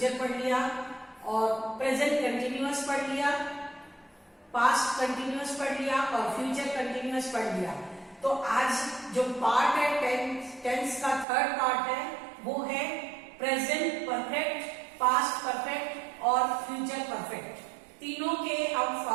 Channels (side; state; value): left; drops out; at 11.2 s